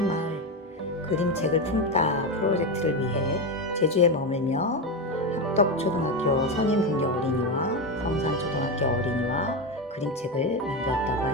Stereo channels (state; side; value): normal; both; correlation 0.13